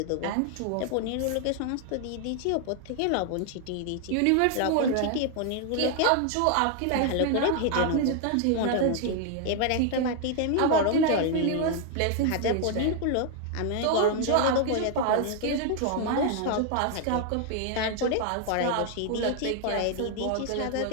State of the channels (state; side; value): different; both; correlation 0.00